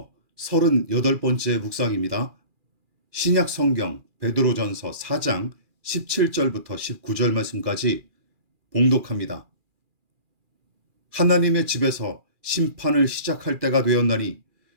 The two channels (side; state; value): left; late; 2.4 ms